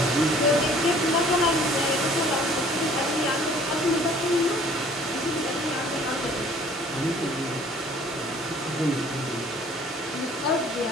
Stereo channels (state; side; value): normal; both; correlation 0.54